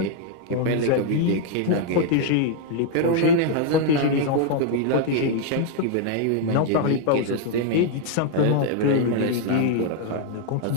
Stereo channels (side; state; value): both; different; correlation 0.00